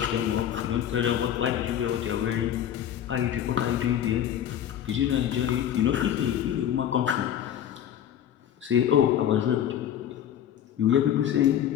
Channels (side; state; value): right; quieter; 10.3 dB